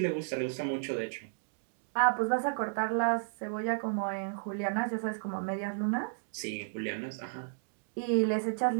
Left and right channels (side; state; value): left; silent; digital silence